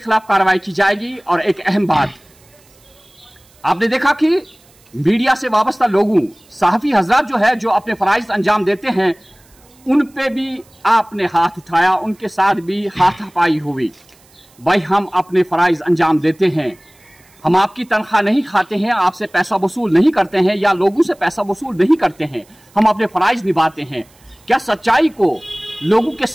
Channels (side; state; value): right; noise; hiss, 30 dB below the sound